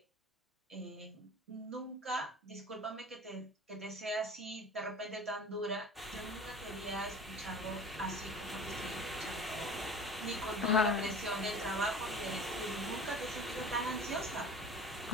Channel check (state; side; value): normal; both; correlation 0.39